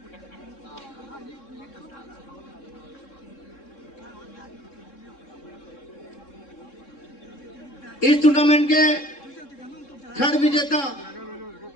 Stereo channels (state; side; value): late; right; 3.7 ms